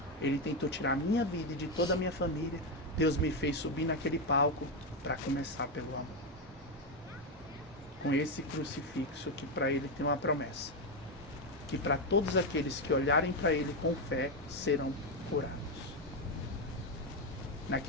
ele tentou tirar a minha vida e de toda a minha família. Deus me fez subir naquele palco para começar pelo amor. Com esse crucifixo que para ele tem uma promessa. Que para todos aqueles que olharem para ele com fé, serão curados.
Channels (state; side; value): normal; both; correlation 0.08